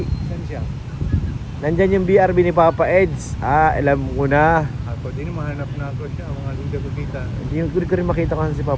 Saan siya? Nandyan yung BRB ni Papa Eds. Alam ko na. Ako din mahanap na ako siya. Mga hindi ko kita. Hindi ko rin makita kasi si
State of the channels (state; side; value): identical; both; correlation 1.00